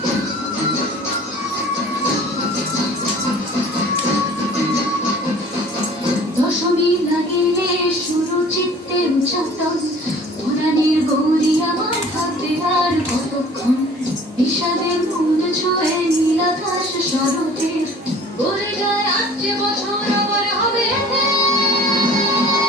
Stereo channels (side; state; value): both; normal; correlation 0.48